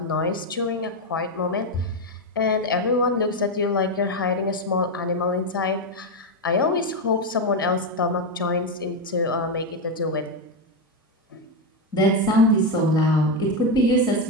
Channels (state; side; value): normal; both; correlation 0.08